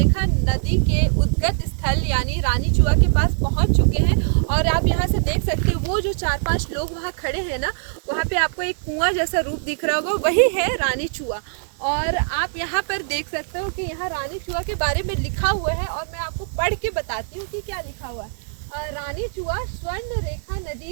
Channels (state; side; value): silent; left; digital silence